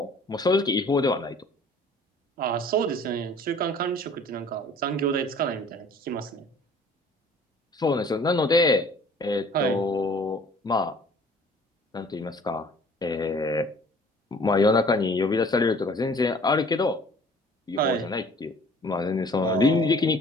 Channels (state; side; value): normal; both; correlation 0.52